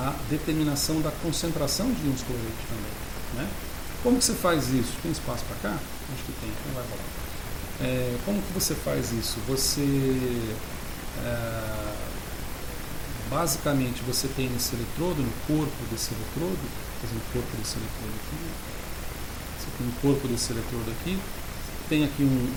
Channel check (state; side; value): identical; both; correlation 1.00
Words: determinação da concentração de íons cloreto também. Né? Como que você faz isso? Tem espaço para cá? Acho que tem, então vai rolar. Como que você faz isso? Você basicamente você tem nesse eletrodo, no corpo desse eletrodo, por exemplo, o corpo desse eletrodo aqui, você tem o corpo desse eletrodo aqui, tem aqui